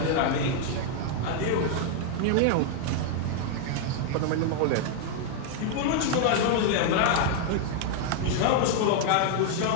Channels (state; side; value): different; both; correlation 0.00